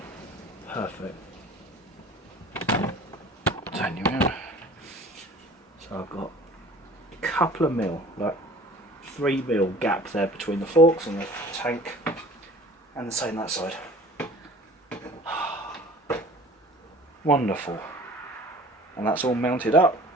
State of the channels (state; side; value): normal; both; correlation 0.46